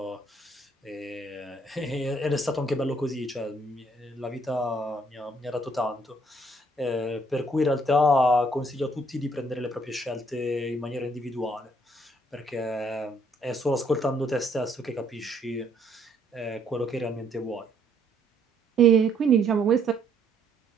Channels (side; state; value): both; normal; correlation 0.66